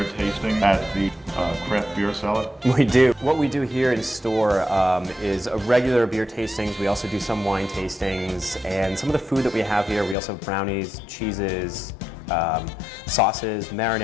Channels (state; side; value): drops out; right; at 10.2 s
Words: tasting at the Craft Beer Cellar? We do. What we do here in store is regular beer tastings. We also do some wine tastings, and some of the food that we have here, we also have brownies, cheeses, sauces,